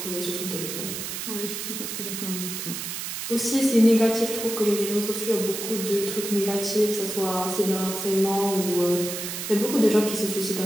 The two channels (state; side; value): noise; right; hiss, 5 dB below the sound